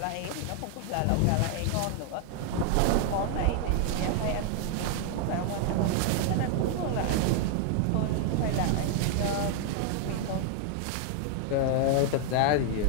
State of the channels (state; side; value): different; both; correlation 0.00